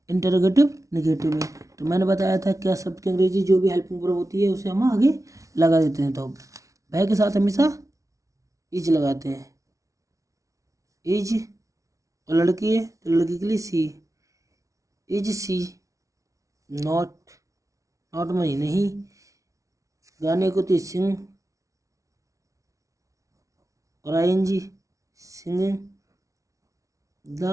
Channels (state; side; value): late; left; 0.16 ms